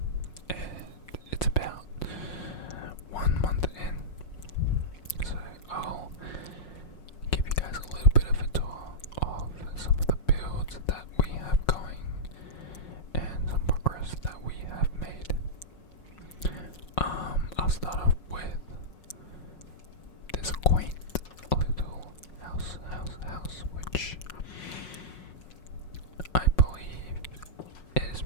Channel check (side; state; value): right; late; 5.5 ms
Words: and it's about 1 month in. So I'll give you guys a little bit of a tour of some of the builds that we have going and some progress that we have made. I'll start off with this quaint little house, which I believe is